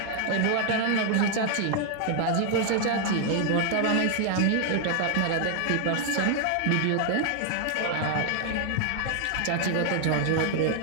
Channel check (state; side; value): different; both; correlation 0.00